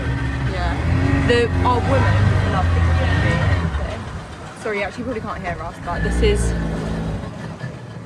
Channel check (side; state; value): both; identical; correlation 1.00